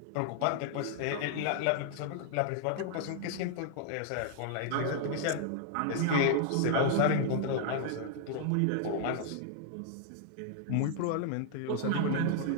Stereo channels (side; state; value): both; different; correlation -0.01